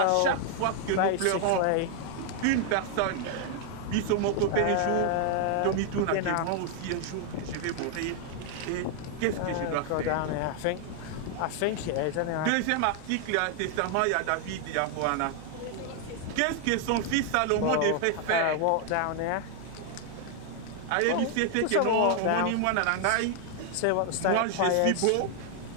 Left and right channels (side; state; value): both; different; correlation 0.00